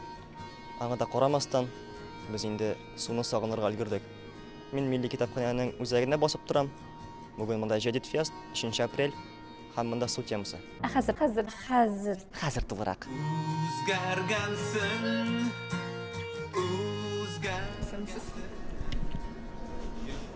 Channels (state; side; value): identical; both; correlation 1.00